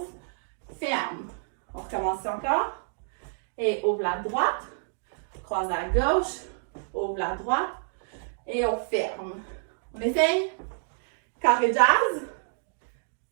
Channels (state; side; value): silent; left; digital silence